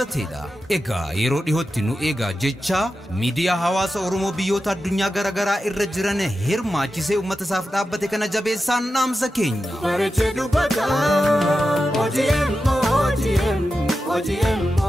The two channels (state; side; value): normal; both; correlation 0.91